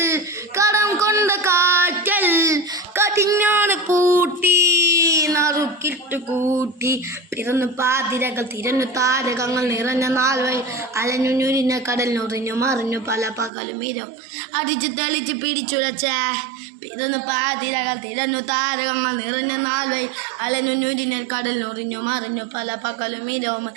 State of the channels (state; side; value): drops out; left; at 13.5 s